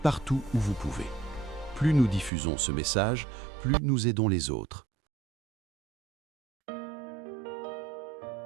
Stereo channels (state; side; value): drops out; left; at 2.3 s